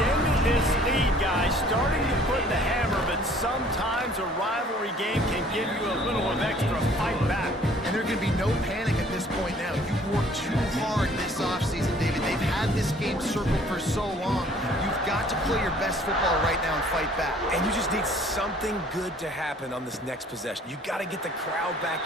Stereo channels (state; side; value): normal; both; correlation 0.55